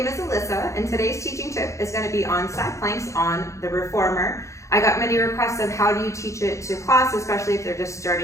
name is Alyssa, and today's teaching tip is going to be on side planks on the reformer. I got many requests of how do you teach it to class, especially if they're just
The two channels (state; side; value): late; right; 0.15 ms